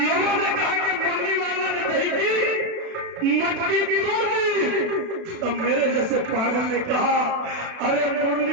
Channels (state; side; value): late; left; 36 ms